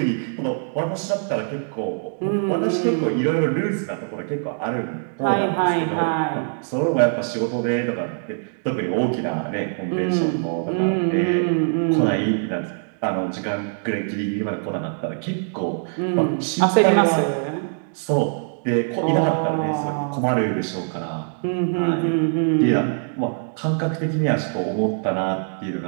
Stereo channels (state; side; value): silent; left; digital silence